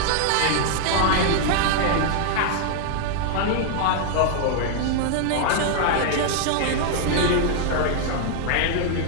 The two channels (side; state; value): both; different; correlation 0.00